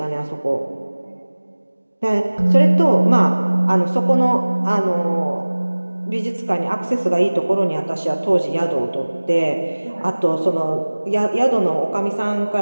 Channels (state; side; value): inverted; both; correlation -1.00